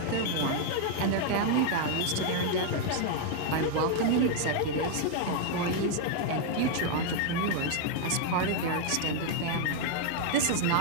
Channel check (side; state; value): both; different; correlation 0.00